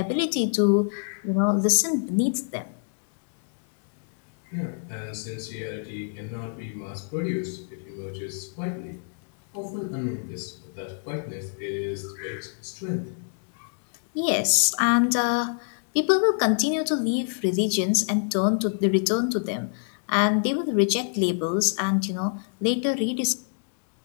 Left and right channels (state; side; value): silent; right; 60 dB below the other